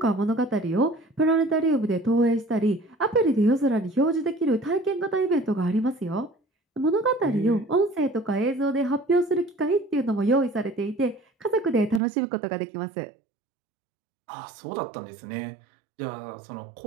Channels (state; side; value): drops out; left; at 12.0 s